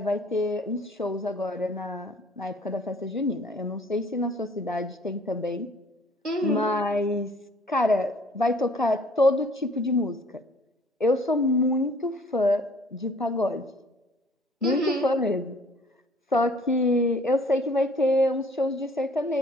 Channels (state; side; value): normal; both; correlation 0.55